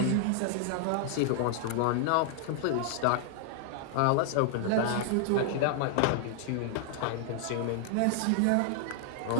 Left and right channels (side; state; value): both; different; correlation 0.00